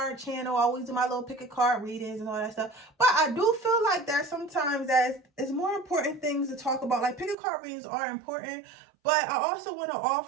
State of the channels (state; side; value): drops out; left; at 7.4 s